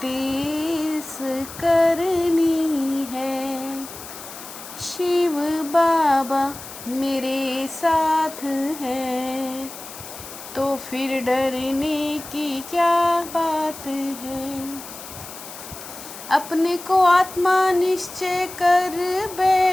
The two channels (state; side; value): noise; left; hiss, 13 dB below the sound